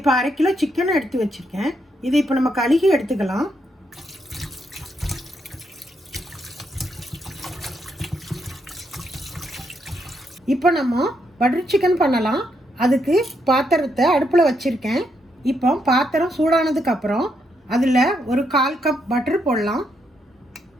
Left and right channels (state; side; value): normal; both; correlation 0.78